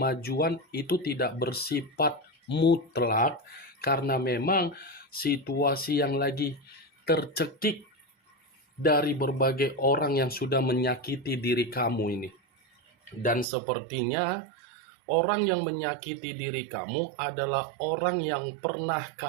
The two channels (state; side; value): drops out; left; at 13.5 s